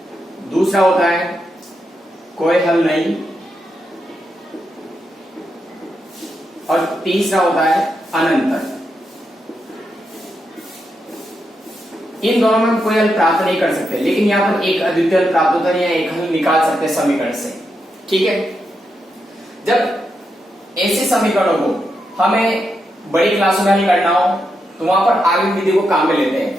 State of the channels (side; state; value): both; normal; correlation 0.84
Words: दूसरा होता है कोई हल नहीं, और तीसरा होता है अनंत। इन दोनों में हम कोई हल प्राप्त नहीं कर सकते, लेकिन यहां पर एक अद्वितीय हल प्राप्त होता है या एक हल निकाल सकते हैं समीकरण से। ठीक है, जब ऐसे समीकरणों को हमें बड़ी क्लासों में हल करना हो तो वहां पर आगे विधि को काम में लेते